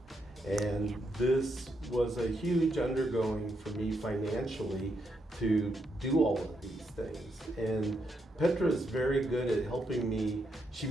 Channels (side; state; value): both; normal; correlation 0.80